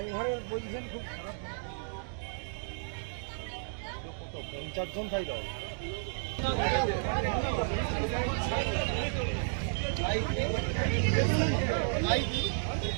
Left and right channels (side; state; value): left; silent; digital silence